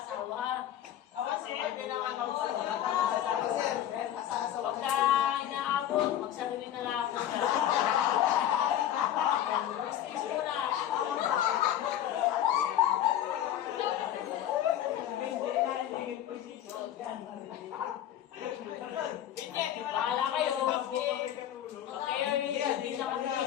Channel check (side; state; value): right; quieter; 11.3 dB